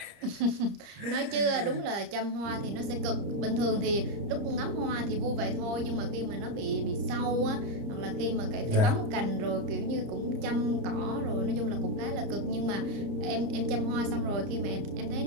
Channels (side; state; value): left; late; 30 ms